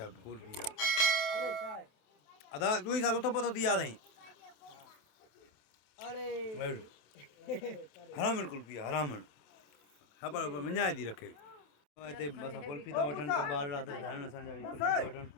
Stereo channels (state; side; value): late; right; 27 ms